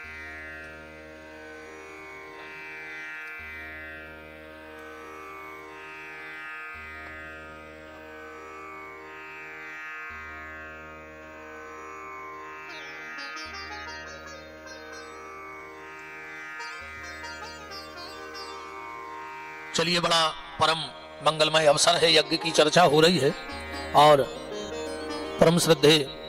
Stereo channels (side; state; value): both; identical; correlation 1.00